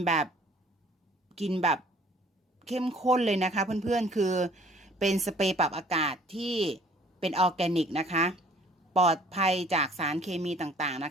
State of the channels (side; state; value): both; normal; correlation 0.55